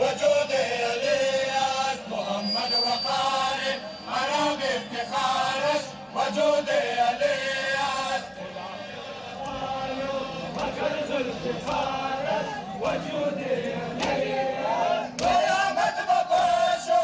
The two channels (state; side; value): identical; both; correlation 1.00